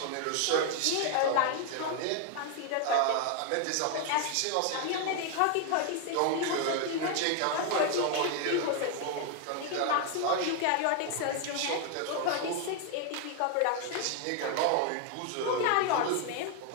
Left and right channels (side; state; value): both; different; correlation 0.01